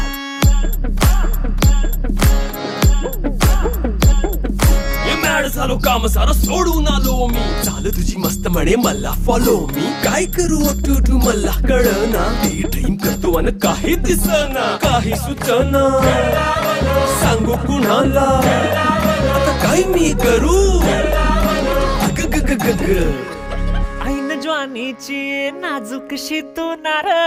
झालो काम सारा सोडून आलो मी झालं तुझी मस्त म्हणे मला फॉलो मी काय करू टू मला कळना ते ड्रीम करतो आणि काही दिसना काही सुचना सांगू कुणाला आता काय मी करू ऐन ज्वानीची नाजूकशी तू नार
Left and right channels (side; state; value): both; identical; correlation 1.00